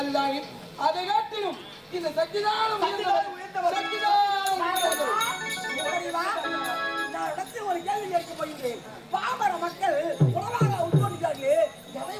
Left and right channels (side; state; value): both; identical; correlation 1.00